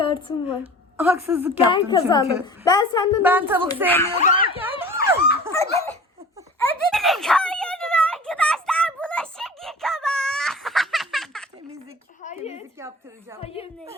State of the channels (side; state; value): both; normal; correlation 0.41